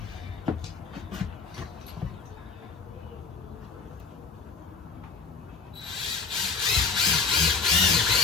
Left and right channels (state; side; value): quieter; right; 4.8 dB